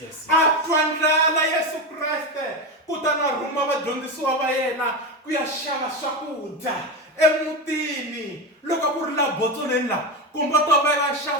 yes. A twa ndlala Yesu Kreste, kutani a rhuma vadyondzisiwa va yena ku ya xava swakudya emutini. Loko ku ri laha botsoleni laha, kumbe to va ya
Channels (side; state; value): both; normal; correlation 0.18